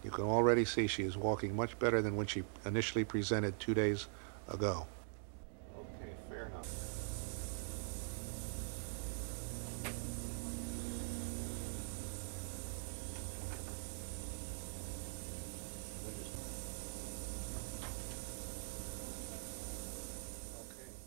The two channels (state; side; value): silent; left; digital silence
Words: You can already see she is walking much better than when she initially presented 2 days ago. Okay, fair enough.